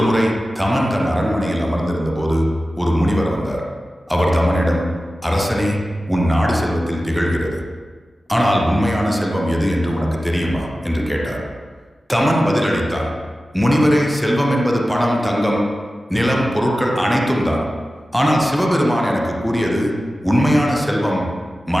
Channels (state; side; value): normal; both; correlation 0.95